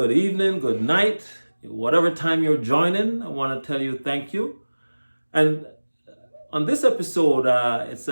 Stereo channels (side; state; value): both; inverted; correlation -1.00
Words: evening, good night. Whatever time you're joining, I want to tell you thank you. And on this episode, it's